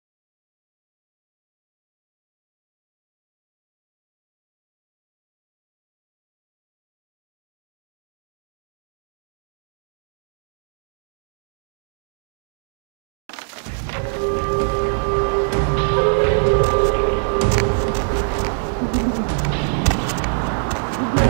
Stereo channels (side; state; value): left; silent; digital silence